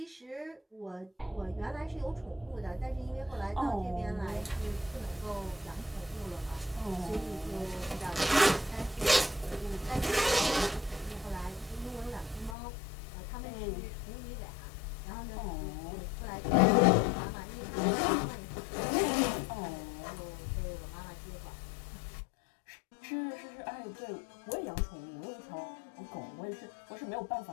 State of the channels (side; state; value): right; drops out; at 12.6 s